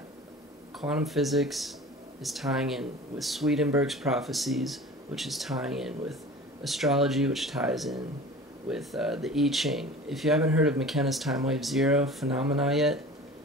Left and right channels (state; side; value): normal; both; correlation 0.39